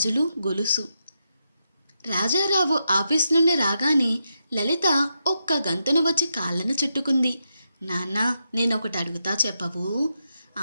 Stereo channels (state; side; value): inverted; both; correlation -0.84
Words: గొలుసు. రాజారావు ఆఫీస్ నుండి రాగానే లలిత ఒక్క గంతున వచ్చి కాళ్ళను చుట్టుకుంది. నాన్న, నేనొకటి అడుగుతా, చెప్పవు?